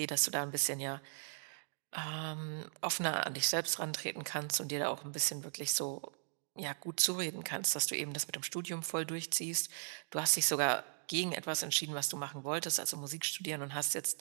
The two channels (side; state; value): left; silent; digital silence